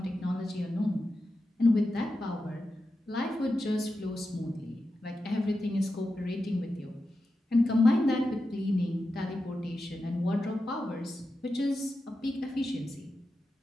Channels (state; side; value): normal; both; correlation 0.91